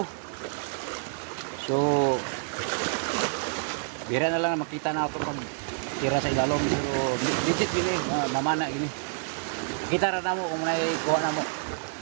So bira na lang makita na ako pag tira sa ilalom, pero legit gini, mamana gini. Kita ra na mo kung may kuha na mo.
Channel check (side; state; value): left; silent; 59 dB below the other